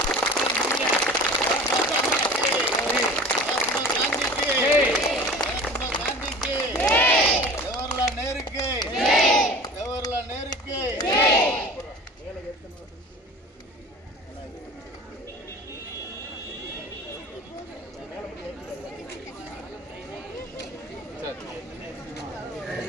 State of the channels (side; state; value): both; normal; correlation 0.40